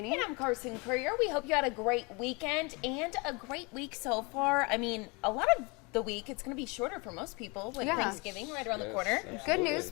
And I'm Carson Courier. We hope you had a great weekend and a great week so far. I mean, a lot of the week, it's going to be shorter for most people with Thanksgiving right around the corner. Absolutely. Good news,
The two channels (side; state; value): right; quieter; 28.7 dB